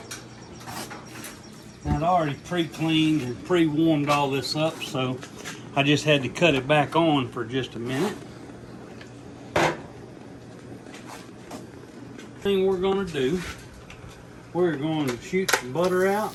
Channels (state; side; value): identical; both; correlation 1.00